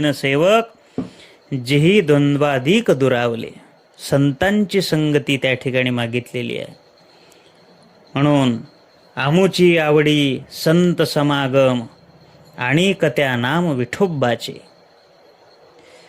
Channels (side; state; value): both; identical; correlation 1.00